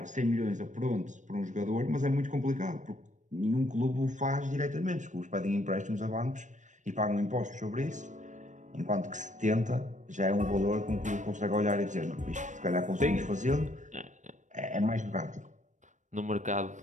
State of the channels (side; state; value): left; late; 0.35 ms